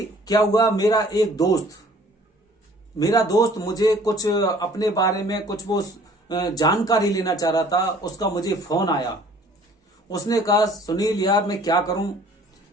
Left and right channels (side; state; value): both; normal; correlation 0.54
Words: क्या हुआ, मेरा दोस्त मुझे कुछ अपने बारे में कुछ वो जानकारी लेना चाह रहा था। उसका मुझे फोन आया। उसने कहा, सुनील यार मैं क्या करूं,